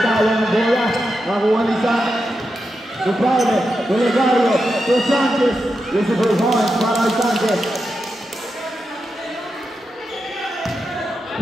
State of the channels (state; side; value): normal; both; correlation 0.88